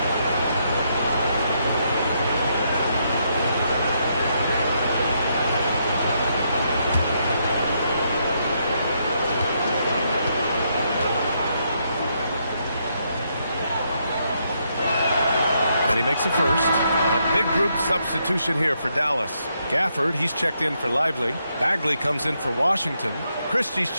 And he makes a first. A big group substitution here for Dallas. Gafford, he's checked in for Lively. Bagley comes in for Washington. Christie's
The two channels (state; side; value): inverted; both; correlation -0.77